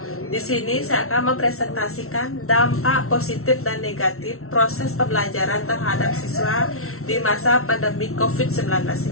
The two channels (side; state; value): right; late; 0.63 ms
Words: Di sini saya akan mempresentasikan dampak positif dan negatif proses pembelajaran terhadap siswa di masa pandemi COVID-19